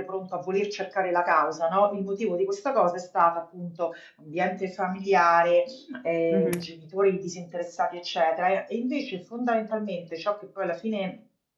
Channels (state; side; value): identical; both; correlation 1.00